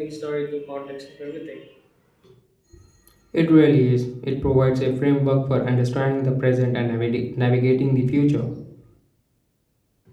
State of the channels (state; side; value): identical; both; correlation 1.00